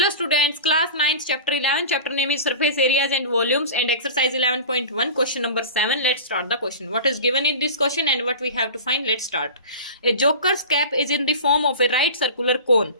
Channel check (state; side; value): inverted; both; correlation -0.34